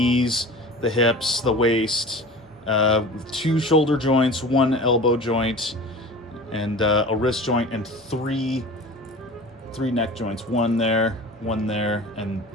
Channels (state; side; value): normal; both; correlation 0.38